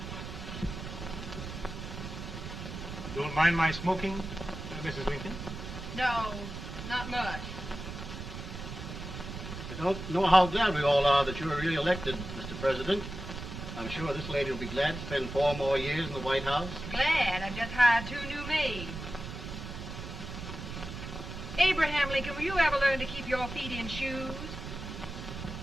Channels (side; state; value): right; noise; rumble, 8 dB below the sound